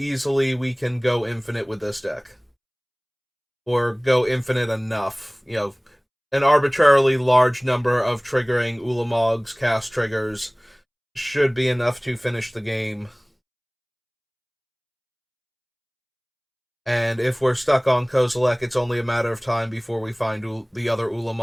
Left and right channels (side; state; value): both; identical; correlation 1.00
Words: we can go infinite with this deck. Or go infinite enough. An arbitrarily large number of triggering Ulamog's cast triggers should be enough to finish the game. And if we're stuck on Kozilek, it's only a matter of time before we find the other